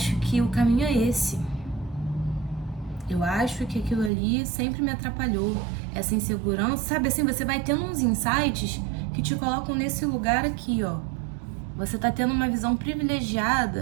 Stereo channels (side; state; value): left; drops out; at 4.1 s